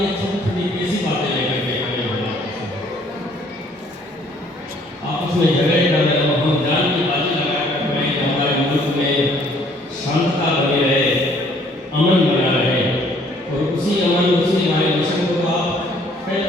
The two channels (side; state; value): both; normal; correlation 0.60